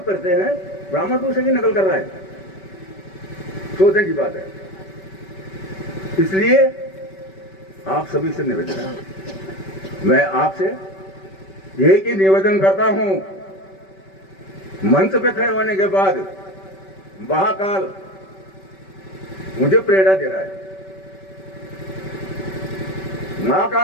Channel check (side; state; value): right; late; 5.2 ms